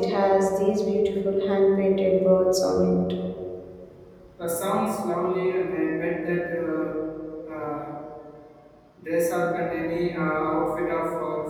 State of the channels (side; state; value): both; identical; correlation 1.00